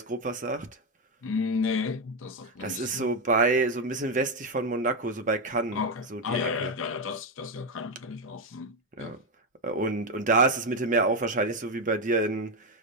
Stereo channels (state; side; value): normal; both; correlation 0.07